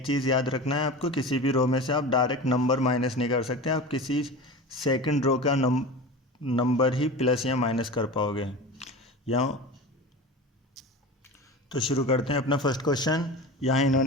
चीज़ याद रखना है आपको, किसी भी रो में से आप डायरेक्ट नंबर माइनस नहीं कर सकते। आप किसी सेकंड रो का नंबर ही प्लस या माइनस कर पाओगे। यहाँ तो शुरू करते हैं अपना फर्स्ट क्वेश्चन। यहाँ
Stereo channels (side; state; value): both; normal; correlation 0.31